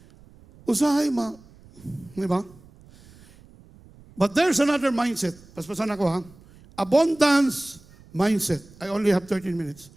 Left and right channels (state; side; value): noise; right; rumble, 25 dB below the sound